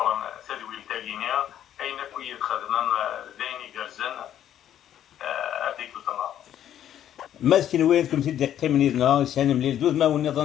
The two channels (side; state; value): right; quieter; 10.8 dB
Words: تدويل تاعينيا اين كوي خدمنا دايني جرزن هذيك الطنا ماسكين وين كنت تدقي من يدنا سان مليل دوز ما